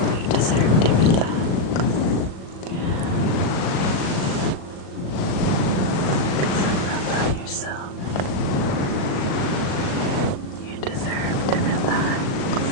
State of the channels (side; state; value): right; late; 38 ms